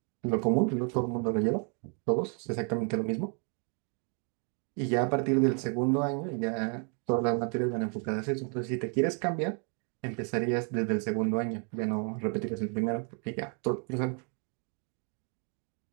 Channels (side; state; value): left; quieter; 39.0 dB